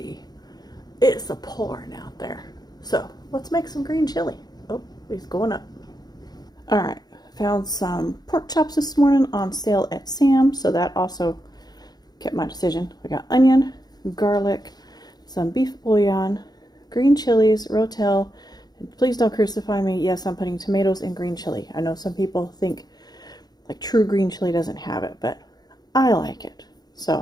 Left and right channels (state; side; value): late; right; 0.19 ms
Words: it's a pouring out there. So let's make some green chili. Oh, he's going up. All right. Found some pork chops this morning on sale at Sam's, so that also kept my decision. We got onion, garlic, some beef bouillon, green chilies, rotel, and please don't crucify me. Yes, I'm putting tomatoes in green chili. I know some people think like true green chili doesn't have it, but I like it.